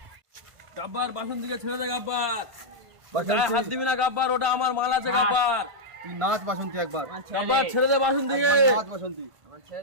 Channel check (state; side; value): late; left; 1.5 ms